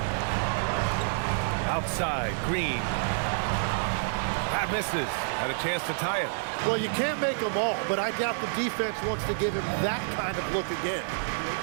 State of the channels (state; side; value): silent; left; digital silence